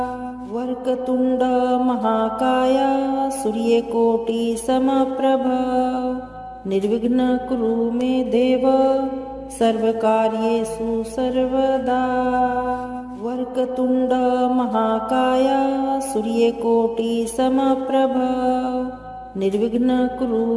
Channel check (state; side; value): identical; both; correlation 1.00